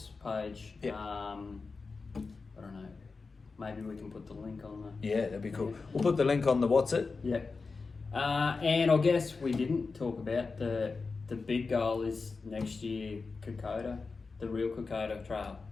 page. Yep. I don't know. Maybe we can put the link on the. Yeah, that'd be cool. We'll put the link on the what's it. Yep. And I guess we didn't talk about the big goal is next year Kokoda, the real Kokoda Trail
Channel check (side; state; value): right; quieter; 4.3 dB